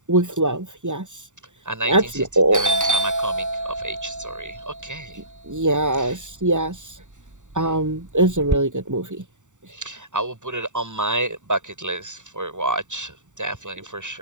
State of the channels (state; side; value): late; left; 0.86 ms